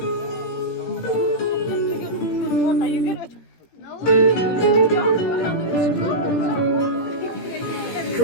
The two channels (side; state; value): right; late; 17 ms